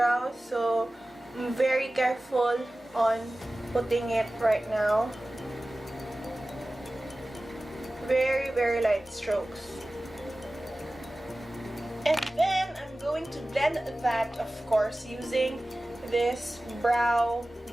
So I'm very careful on putting it right now. Very, very light strokes. And then I'm going to blend that, of course, using this brow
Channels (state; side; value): normal; both; correlation 0.97